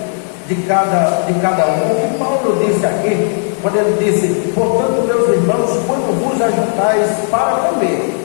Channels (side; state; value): right; silent; 57 dB below the other